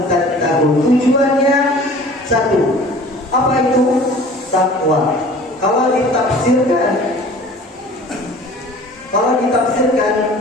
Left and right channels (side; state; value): both; normal; correlation 0.46